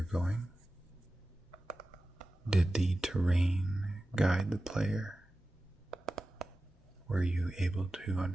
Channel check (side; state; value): both; normal; correlation 0.95